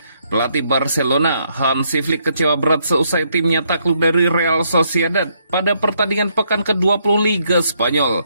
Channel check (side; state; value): both; inverted; correlation -0.73